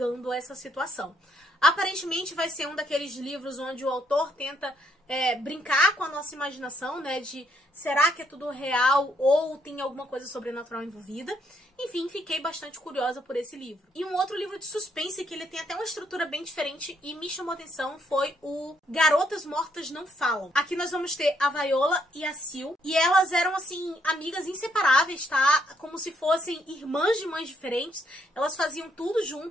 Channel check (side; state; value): both; normal; correlation 0.72